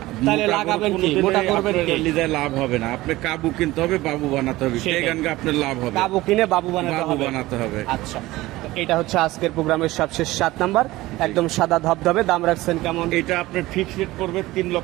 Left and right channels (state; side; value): quieter; left; 18.3 dB